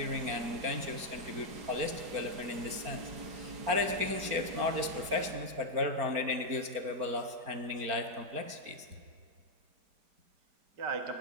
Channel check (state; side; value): late; left; 4.4 ms